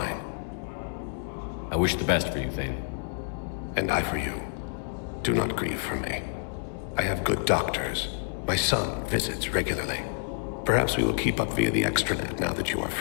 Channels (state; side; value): silent; right; 59 dB below the other